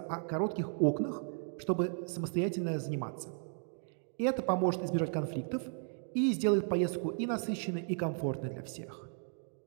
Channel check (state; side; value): silent; left; 54 dB below the other